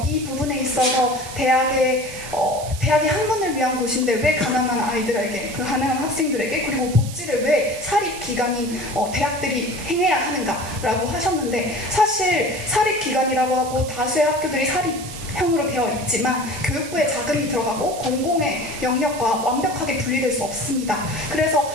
이 부분에 있어서 대학이 학문을 위한 곳인데 왜 가난한 아이들에게 그 가난한 학생들에게 그리고 복지를 왜 사립기관인 대학들이 행해야 하는가라고 하셨는데 사실 사립기관이라고 하고 다수의 학교들이 사립형으로 되어 있지만 교육부에 자금이 들어가고 공공의 영역과 완벽하게 분리될 수 없습니다. 그래서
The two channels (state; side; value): noise; right; hiss, 13 dB below the sound